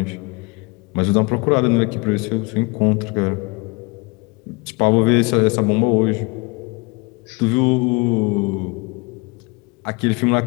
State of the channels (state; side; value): quieter; right; 27.7 dB